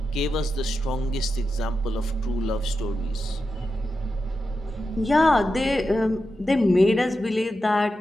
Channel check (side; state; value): both; normal; correlation 0.89